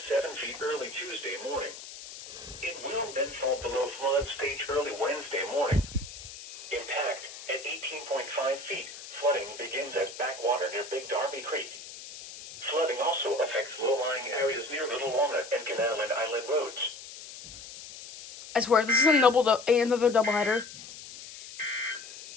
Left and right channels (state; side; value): noise; left; hiss, 14 dB below the sound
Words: feet early Tuesday morning. It will then fall below flood stage early Wednesday morning. Impact at 18.5 feet. Flooding begins at backwater near Big Darby Creek. Flooding also affects low-lying areas near Little Walnut and Canal and Island roads. I swear, this is another doubleheader.